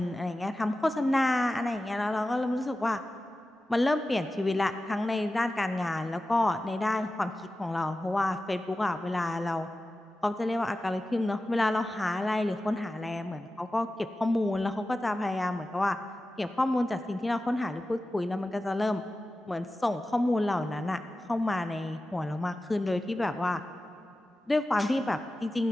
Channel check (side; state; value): both; normal; correlation 0.94